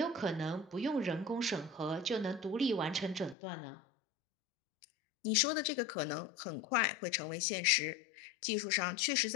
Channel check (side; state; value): right; drops out; at 3.4 s